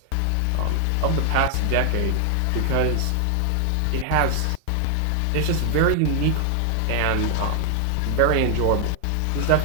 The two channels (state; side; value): different; both; correlation 0.00